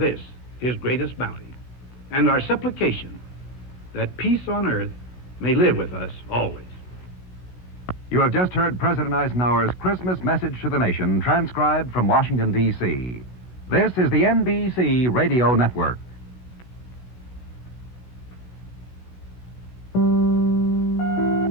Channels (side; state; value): right; late; 16 ms